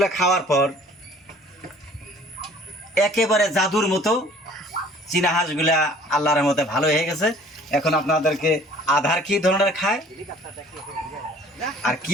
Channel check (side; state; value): both; normal; correlation 0.52